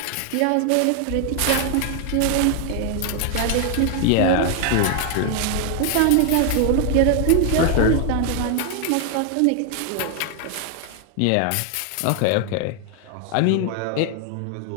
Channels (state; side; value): different; both; correlation 0.00